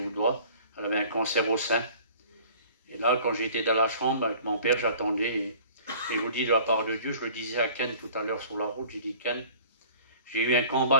Elle avait un cancer au sein. Et là, quand j'étais dans la chambre avec mon père, j'attendais. Et je vous dis de la part de Dieu, je le disais à Ken tout à l'heure sur la route, j'ai dit, Ken, j'ai eu un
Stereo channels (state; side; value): inverted; both; correlation -0.48